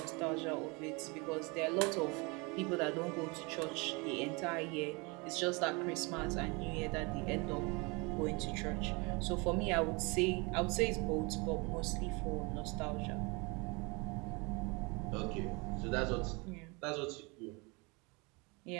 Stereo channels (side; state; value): left; quieter; 28.4 dB